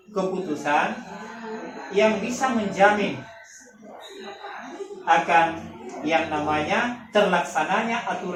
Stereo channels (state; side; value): identical; both; correlation 1.00